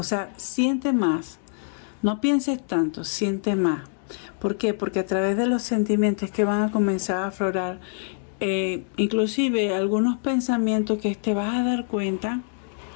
siente más. No pienses tanto, siente más. ¿Por qué? Porque a través de los sentimientos que van a comenzar a aflorar, inclusive algunos pensamientos que te vas a dar cuenta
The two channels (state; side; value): silent; right; digital silence